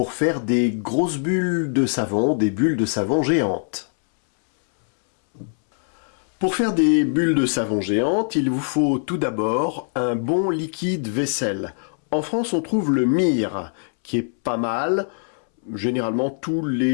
faire des grosses bulles de savon, des bulles de savon géantes. Pour faire des bulles de savon géantes, il vous faut tout d'abord un bon liquide vaisselle. En France, on trouve le Mire, qui est pas mal. Généralement, tous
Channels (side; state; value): right; silent; 64 dB below the other